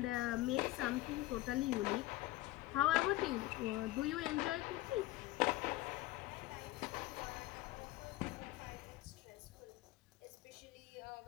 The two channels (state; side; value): quieter; right; 17.1 dB